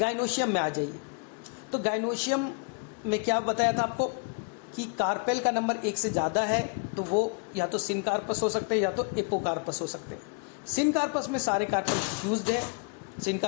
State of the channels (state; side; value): quieter; right; 36.1 dB